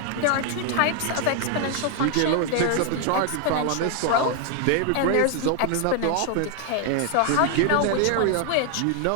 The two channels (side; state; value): both; different; correlation 0.00